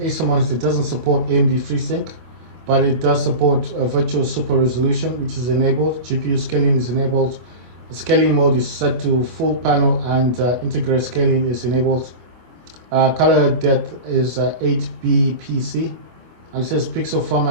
monitor. It doesn't support AMD FreeSync, but it does support virtual super resolution, which is enabled. GPU scaling is enabled. The scaling mode is set to full panel, and integrated scaling is enabled. Color depth is 8bpc, and it says pixel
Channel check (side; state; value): left; late; 25 ms